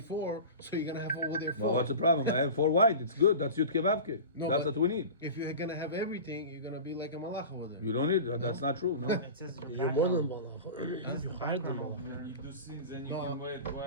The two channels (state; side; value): inverted; both; correlation -0.32